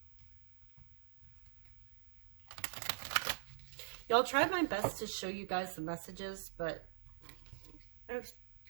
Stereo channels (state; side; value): silent; left; digital silence